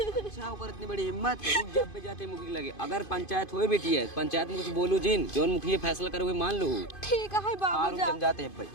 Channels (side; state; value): right; late; 2.5 ms